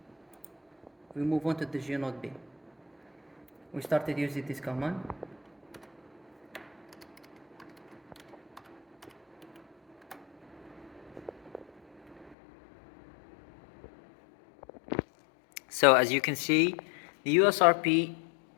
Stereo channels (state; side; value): drops out; right; at 12.4 s